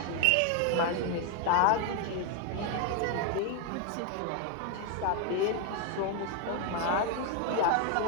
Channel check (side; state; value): both; different; correlation 0.01